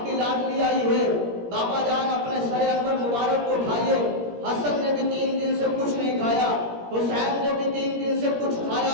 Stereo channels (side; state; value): left; late; 17 ms